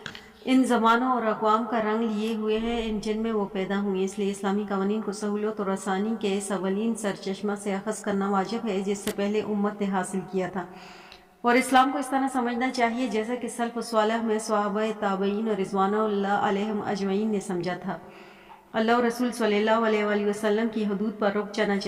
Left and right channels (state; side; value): identical; both; correlation 1.00